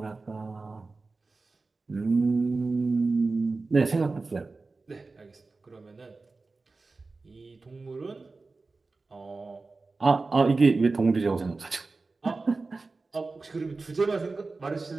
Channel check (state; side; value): quieter; left; 3.7 dB